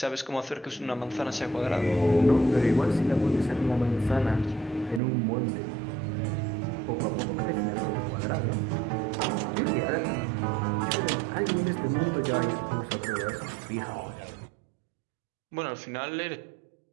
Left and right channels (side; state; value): left; drops out; at 5.0 s